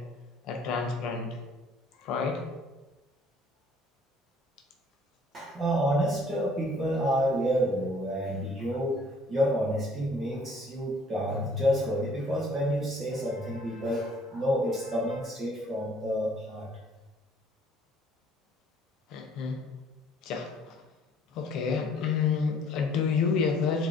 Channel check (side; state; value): both; normal; correlation 0.58